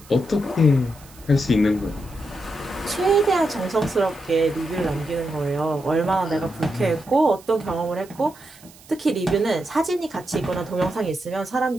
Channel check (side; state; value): right; noise; hiss, 23 dB below the sound